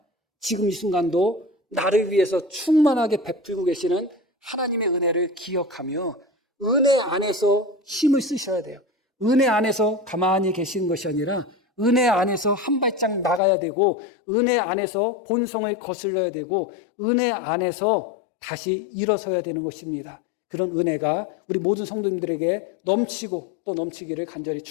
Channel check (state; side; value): drops out; right; at 13.4 s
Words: 지금 이 순간도 나를 위해서 충만하게 베풀고 계시는 하나님의 은혜를 기억하며 은혜 안에서 힘을 쓰셔야 돼요. 은혜 안에서 가만히 계시는 것이 아니라 은혜 안에서 한 발짝 나가야 되고 은혜 안에서 본성을 거슬러야 되고 은혜 안에서 다시 일어서야 되는 것입니다. 그런 은혜가 우리 모든 성도님들에게 넘치고 또 넘치기를 간절히